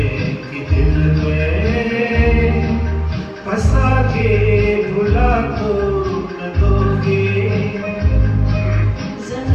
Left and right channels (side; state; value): both; identical; correlation 1.00